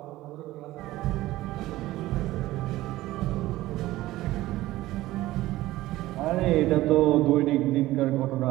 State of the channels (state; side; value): quieter; left; 16.7 dB